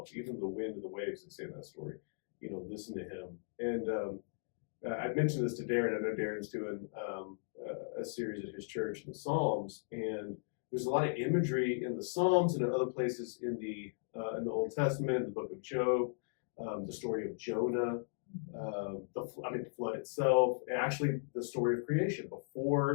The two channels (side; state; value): right; silent; digital silence